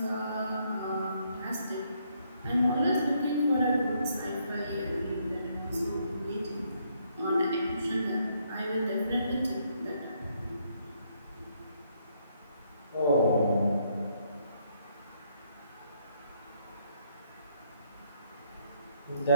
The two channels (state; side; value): inverted; both; correlation -0.72